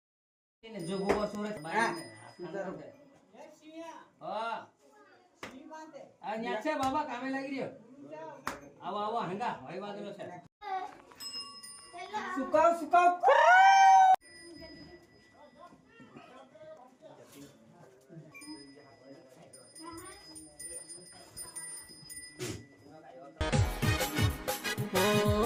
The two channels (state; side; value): identical; both; correlation 1.00